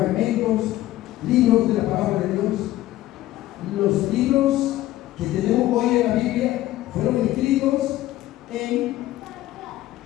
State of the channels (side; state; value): right; quieter; 15.2 dB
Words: libros de la palabra de Dios. Los libros que tenemos hoy en la Biblia fueron escritos en